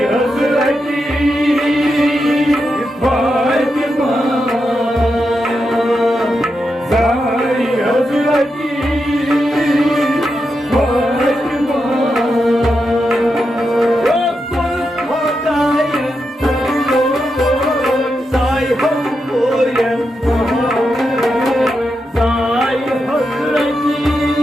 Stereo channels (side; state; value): both; normal; correlation 0.86